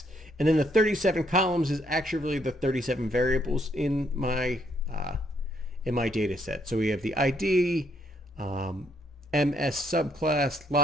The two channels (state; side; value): normal; both; correlation 0.71